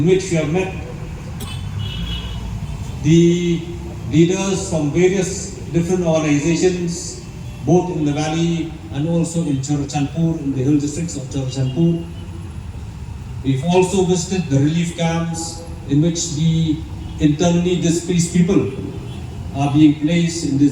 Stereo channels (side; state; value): both; identical; correlation 1.00